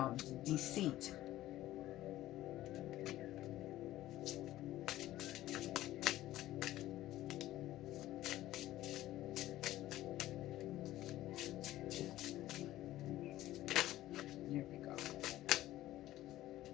deceit. There we go.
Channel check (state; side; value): quieter; right; 15.0 dB